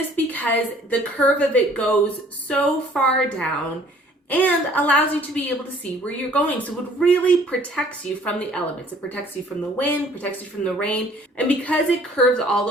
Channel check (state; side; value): normal; both; correlation 0.56